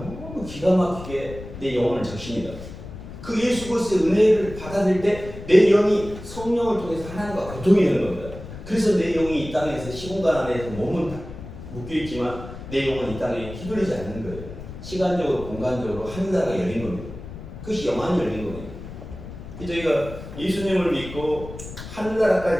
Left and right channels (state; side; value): noise; left; rumble, 12 dB below the sound